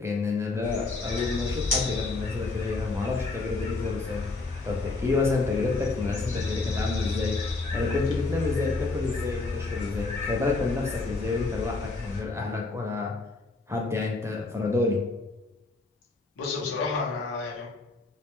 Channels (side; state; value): right; quieter; 3.5 dB